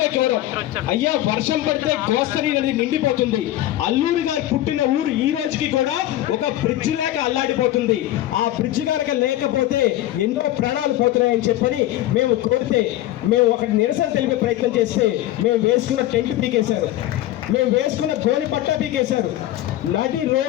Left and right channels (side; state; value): right; quieter; 14.4 dB